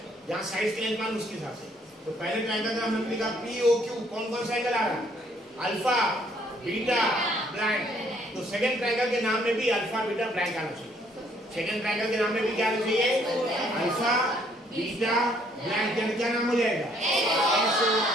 जहाँ साइड्स की लेंथ मालूम उसके हिसाब से तो पहले ट्रायंगल का नाम हमने लिखा POQ कौन कौन सा एंगल आ रहा है अल्फा बीटा ब्लैंक तो सेकंड ट्रायंगल के नाम में भी अल्फा बीटा ब्लैंक आना चाहिए सेकंड ट्रायंगल के नाम में भी क्या आना चाहिए अल्फा बीटा ब्लैंक यानी क्या नाम हो जाएगा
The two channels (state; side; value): normal; both; correlation 0.65